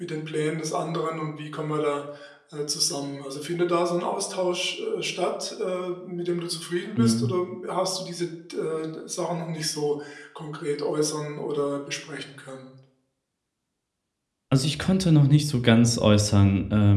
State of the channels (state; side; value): identical; both; correlation 1.00